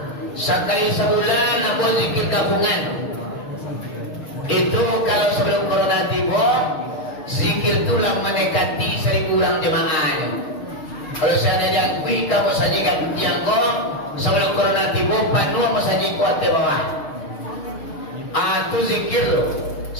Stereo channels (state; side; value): late; right; 6.5 ms